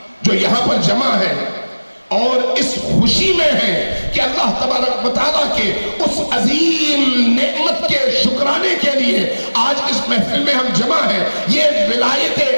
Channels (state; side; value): inverted; both; correlation -1.00